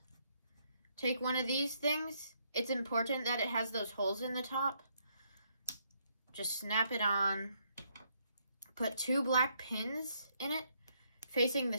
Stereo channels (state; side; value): inverted; both; correlation -0.72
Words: Take one of these things. It's important that it has those holes in the top. Just snap it on. Put 2 black pins in it, facing the